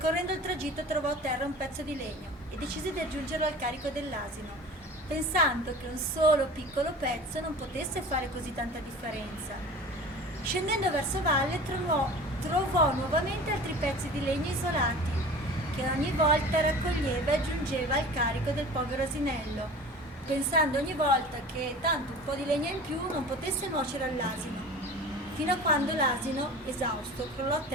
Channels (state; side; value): normal; both; correlation 0.39